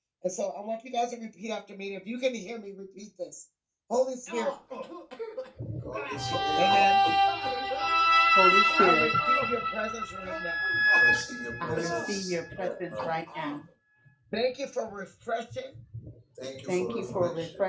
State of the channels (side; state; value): both; identical; correlation 1.00